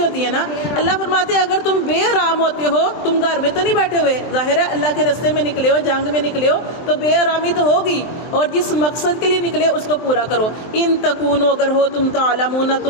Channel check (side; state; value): right; late; 23 ms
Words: ہے نا۔ اللہ فرماتے ہیں اگر تم بے آرام ہوتے ہو، تم گھر میں تو نہیں بیٹھے ہوئے، ظاہر ہے اللہ کے راستے میں نکلے ہو، جنگ میں نکلے ہو تو بے آرامی تو ہوگی، اور جس مقصد کے لیے نکلے اس کو پورا کرو۔ ان تکونوا، اگر ہو تم تعلمون،